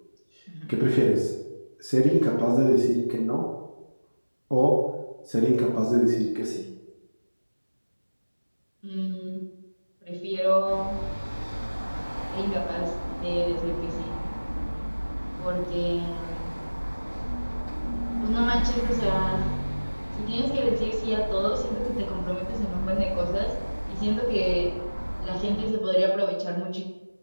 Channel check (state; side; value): inverted; both; correlation -1.00